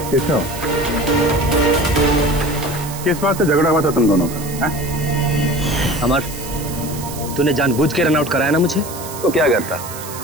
केशव, किस बात से झगड़ा हुआ था तुम दोनों का? अमर, तूने जानबूझ के रन आउट कराया ना मुझे? तो क्या करता?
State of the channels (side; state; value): right; noise; hiss, 12 dB below the sound